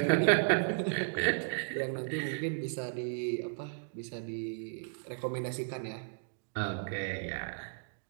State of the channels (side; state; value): left; silent; digital silence